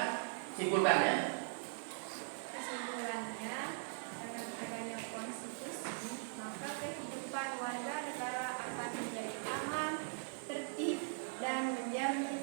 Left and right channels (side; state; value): left; silent; digital silence